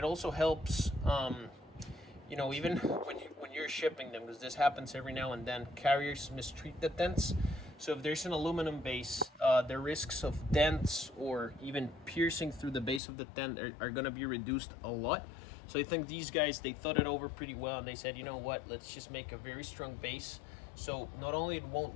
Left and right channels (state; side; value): drops out; right; at 13.0 s